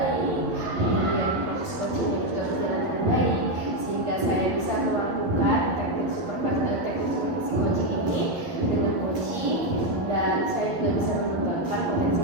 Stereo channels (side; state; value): left; late; 11 ms